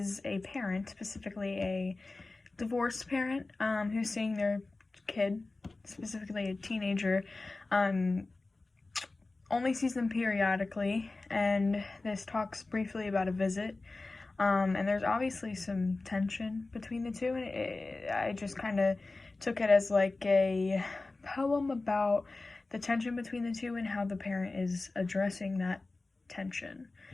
a parent, specifically a divorced parent, who's seeing their kid, specifically a teenager, only sees them periodically, and this talks briefly about a visit. And there's obviously some tension between the two, and I just kind of took it as like a poem about the tension between the two and how the parent is addressing that tension.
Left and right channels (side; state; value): right; quieter; 3.3 dB